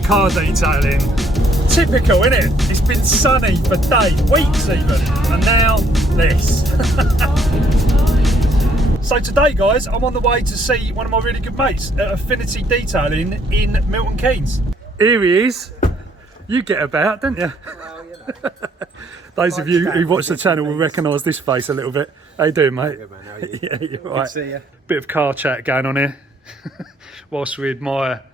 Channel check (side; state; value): both; normal; correlation 0.67